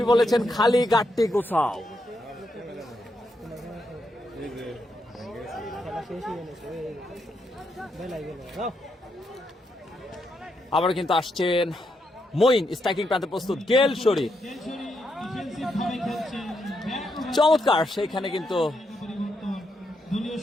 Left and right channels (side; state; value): both; normal; correlation 0.81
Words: বলেছেন খালি গাট্টি গোছাও। খেলা শেষ হয়ে গেছে, বেলাই গেল। আবার কিন্তু আসছেন মঈন, স্ট্রাইকিং প্রান্তে প্রস্তুত গেল শরীফ, ডিফেন্সিভ ভাবে খেলছেন। চমৎকার, সেইখানে কিন্তু পরিবর্তন দলীয়